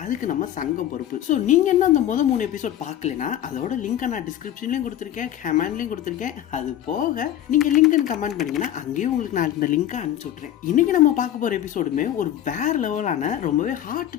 அதுக்கு நம்ம சங்கம் பொறுப்பு. ஸோ நீங்க என்ன அந்த முதல் 3 எபிசோட் பார்க்கலனா அதோட லிங்க் நான் டிஸ்கிரிப்ஷன்லயும் கொடுத்துருக்கேன், கமெண்ட்லயும் கொடுத்துருக்கேன். அது போக நீங்க லிங்க் கமெண்ட் பண்ணீங்கன்னா அங்கேயும் உங்களுக்கு நான் இந்த லிங்கை அனுப்பிச்சு விட்டுறேன். இன்னைக்கு நம்ம பார்க்க போற எபிசோடுமே ஒரு வேற லெவலான ரொம்பவே ஹார்ட்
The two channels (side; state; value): right; quieter; 11.6 dB